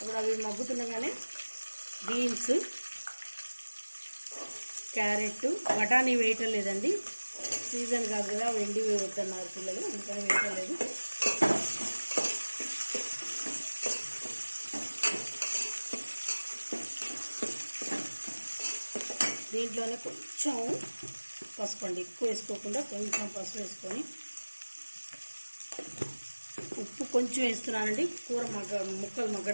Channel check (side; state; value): both; inverted; correlation -1.00